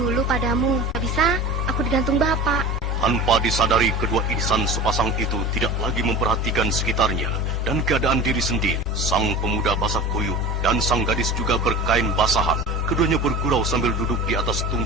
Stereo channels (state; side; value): normal; both; correlation 0.34